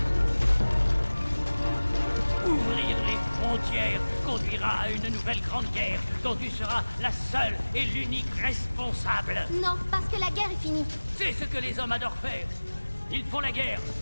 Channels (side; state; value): both; inverted; correlation -1.00